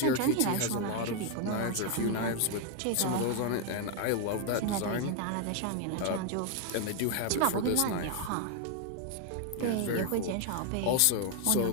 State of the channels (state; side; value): different; both; correlation 0.01